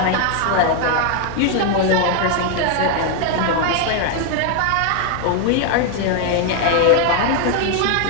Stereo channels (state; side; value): different; both; correlation 0.00